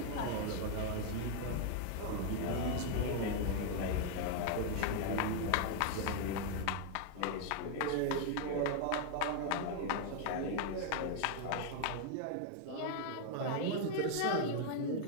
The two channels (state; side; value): different; both; correlation 0.00